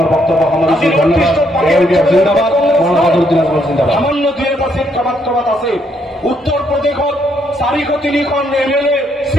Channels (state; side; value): normal; both; correlation 0.72